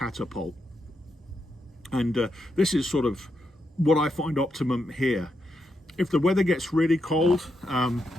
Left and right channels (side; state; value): both; normal; correlation 0.83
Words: And this is sort of what I find optimum here. If the weather gets really cold, and